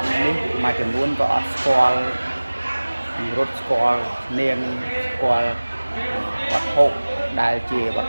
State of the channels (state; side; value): inverted; both; correlation -1.00